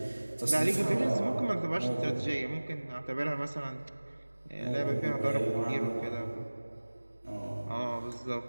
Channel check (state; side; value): inverted; both; correlation -1.00